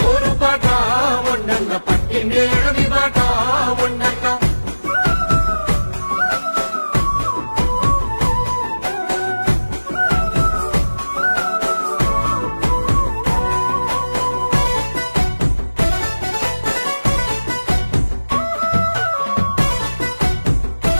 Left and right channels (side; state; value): both; inverted; correlation -1.00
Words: పోరు పాట మొండన్న పట్టిండే గడవి పాట మొండన్న